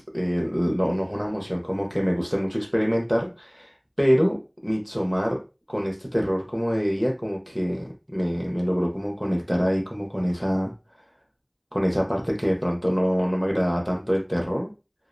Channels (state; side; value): identical; both; correlation 1.00